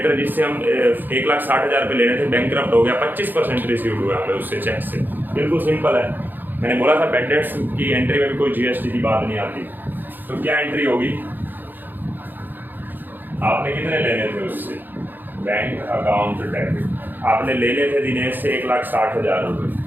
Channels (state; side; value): late; left; 0.090 ms